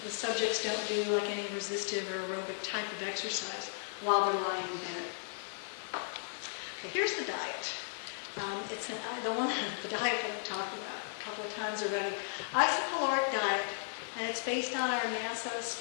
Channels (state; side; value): silent; right; 54 dB below the other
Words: the subjects don't do like any resistive or aerobic type of exercise while they're lying in bed. Okay, here's the diet. It's the diet that I've talked about a couple of times already. Isocaloric diet, and it's based on our NASA